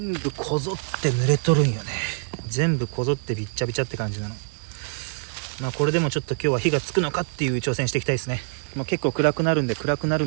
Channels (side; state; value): left; silent; 55 dB below the other